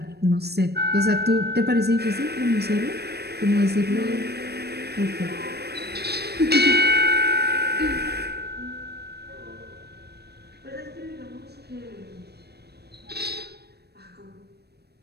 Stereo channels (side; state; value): left; late; 0.47 ms